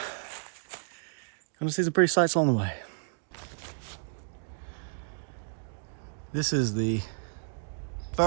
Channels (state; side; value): silent; left; digital silence